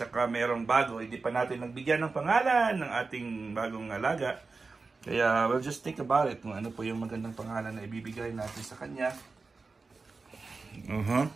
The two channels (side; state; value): left; quieter; 4.1 dB